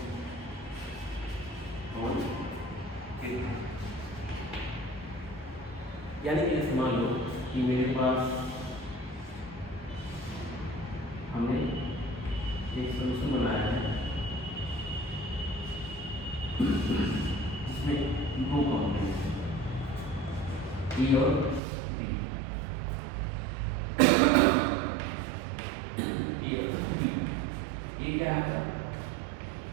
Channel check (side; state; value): left; drops out; at 21.6 s